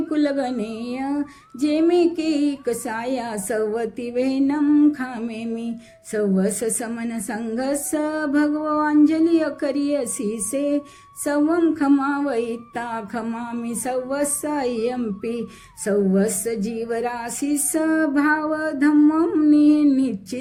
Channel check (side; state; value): both; identical; correlation 1.00